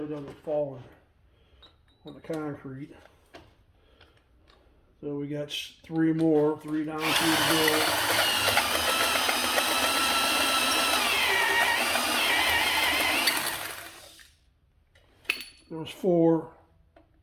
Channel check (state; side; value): identical; both; correlation 1.00